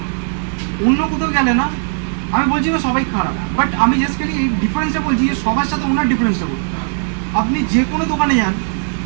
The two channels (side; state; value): left; silent; 59 dB below the other